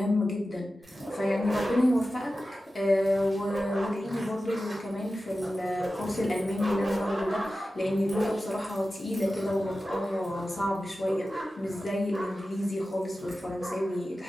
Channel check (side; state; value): both; normal; correlation 0.94